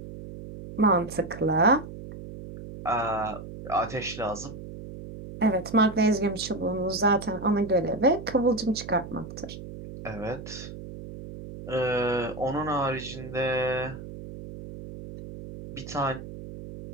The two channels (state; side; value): noise; right; hum, 12 dB below the sound